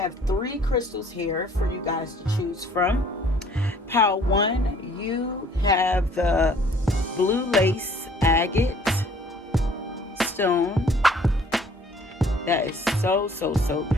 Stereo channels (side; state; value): both; normal; correlation 0.56